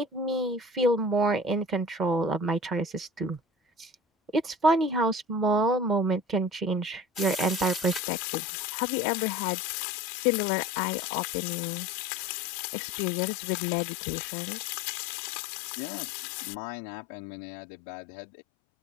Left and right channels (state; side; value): drops out; right; at 8.0 s